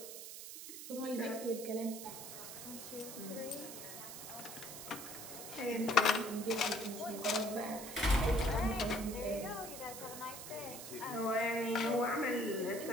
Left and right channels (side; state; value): right; noise; hiss, 10 dB below the sound